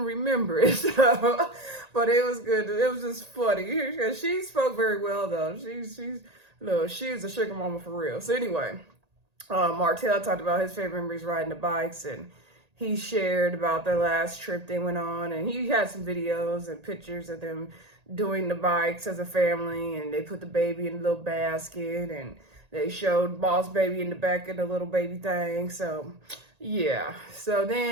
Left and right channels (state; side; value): late; left; 1.8 ms